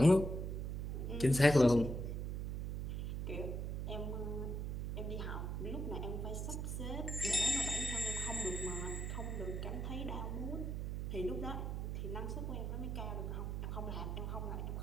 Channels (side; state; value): right; noise; hum, 2 dB below the sound